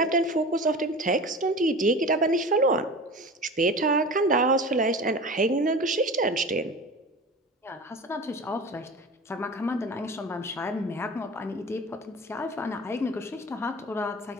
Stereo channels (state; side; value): normal; both; correlation 0.34